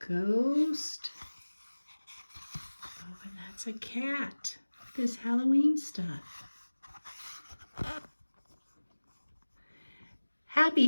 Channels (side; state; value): both; inverted; correlation -1.00